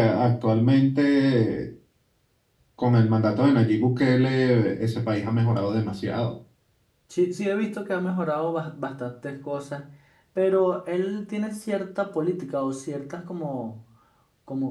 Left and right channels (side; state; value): both; identical; correlation 1.00